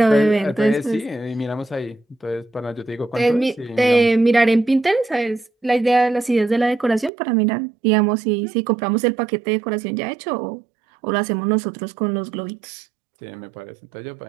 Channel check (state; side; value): drops out; left; at 7.1 s